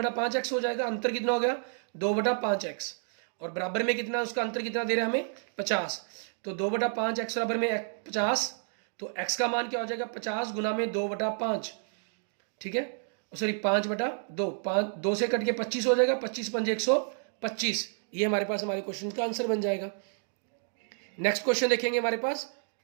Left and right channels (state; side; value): silent; left; 58 dB below the other